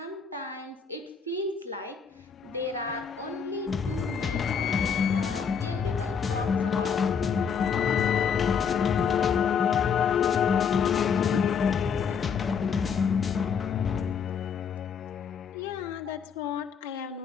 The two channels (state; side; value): quieter; right; 6.6 dB